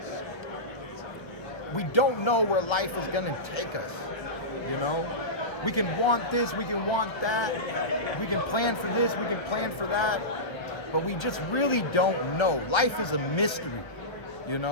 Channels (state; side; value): late; right; 1.1 ms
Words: We don't know where life is gonna take us, you know? We can want this, we can want that, we can plan for this, we can plan for that, but we just really don't know. Life is a mystery, you